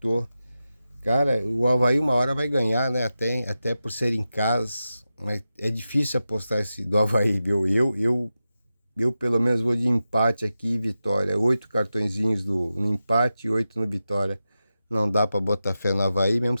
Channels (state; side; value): inverted; both; correlation -0.92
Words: Cara, o Avaí uma hora vai ganhar, né? Até por ser em casa. Mas é difícil apostar esse do Avaí, viu? Eu pelo menos vou de empate aqui e vitória. 8 cartõezinhos no empate e 8 no vitória. Não dá para botar fé no Avaí, mesmo